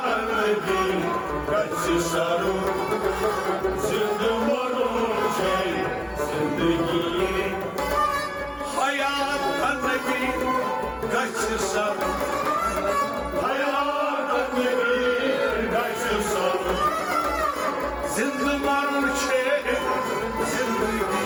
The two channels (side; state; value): both; identical; correlation 1.00